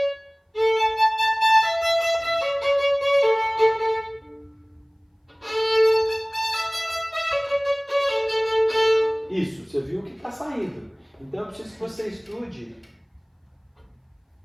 Então eu preciso que você estude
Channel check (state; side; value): identical; both; correlation 1.00